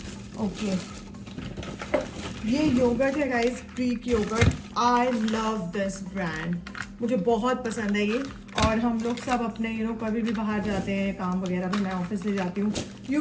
ओके, ये योगर्ट है guys, Greek yogurt. I love this brand, मुझे बहुत पसंद है ये। और हम लोग सब अपने कभी भी बाहर जाते हैं, काम वगैरह भी मैं ऑफिस ले जाती हूँ, यू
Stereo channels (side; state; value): both; identical; correlation 1.00